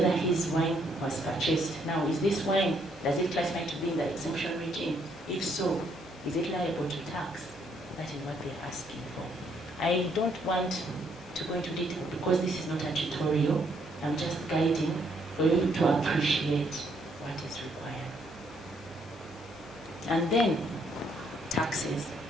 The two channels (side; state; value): left; noise; hum, 25 dB below the sound